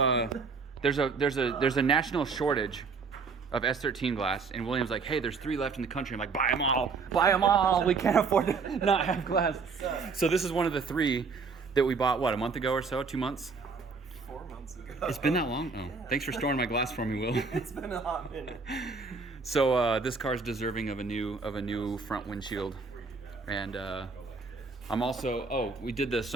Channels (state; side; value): quieter; left; 4.8 dB